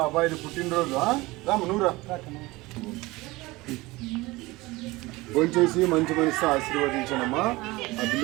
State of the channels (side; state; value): left; quieter; 21.1 dB